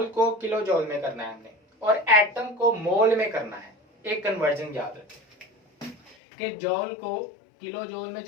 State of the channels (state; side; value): drops out; right; at 6.2 s